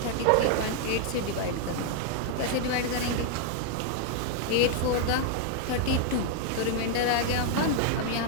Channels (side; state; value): both; different; correlation 0.00